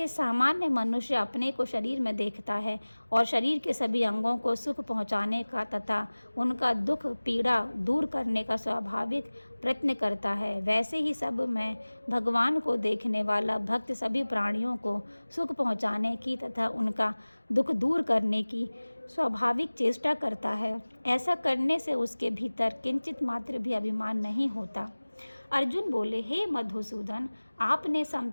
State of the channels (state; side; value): inverted; both; correlation -1.00